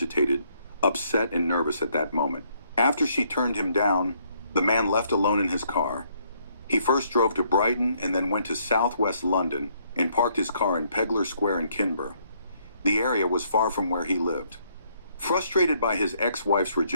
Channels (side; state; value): both; inverted; correlation -0.69